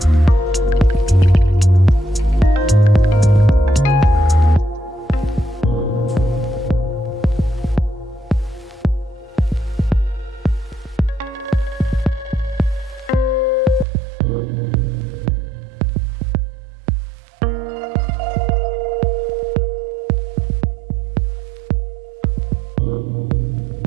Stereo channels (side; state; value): left; drops out; at 13.9 s